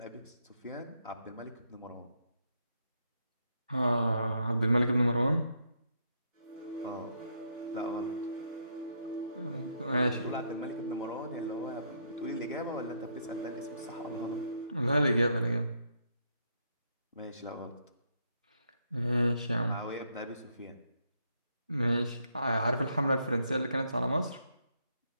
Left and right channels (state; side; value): inverted; both; correlation -0.75